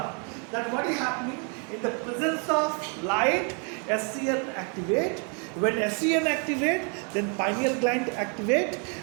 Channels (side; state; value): left; quieter; 38.1 dB